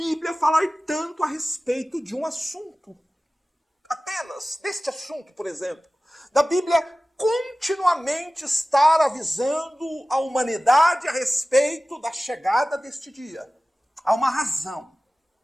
falar tanto a respeito de um assunto. Apenas deste assunto, por exemplo, da Bíblia continuamente estar avisando a humanidade a respeito da chegada deste dia. Há uma razão.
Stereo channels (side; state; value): both; normal; correlation 0.97